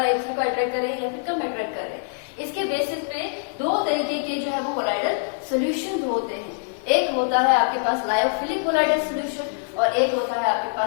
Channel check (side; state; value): right; silent; 63 dB below the other